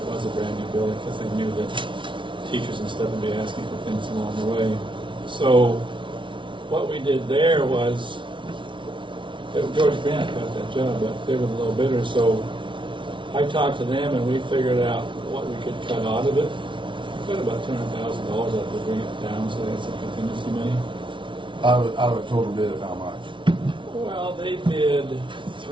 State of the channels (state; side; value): late; left; 0.24 ms